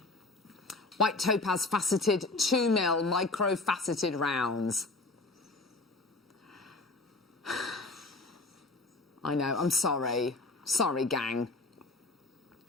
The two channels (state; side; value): quieter; right; 3.2 dB